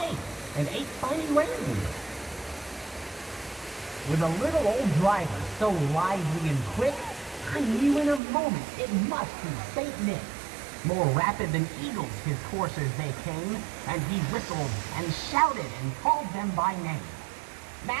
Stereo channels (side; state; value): left; drops out; at 8.2 s